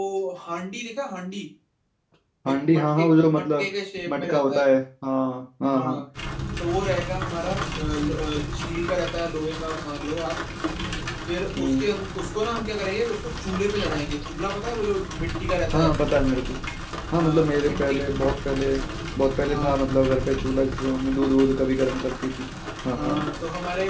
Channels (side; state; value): both; identical; correlation 1.00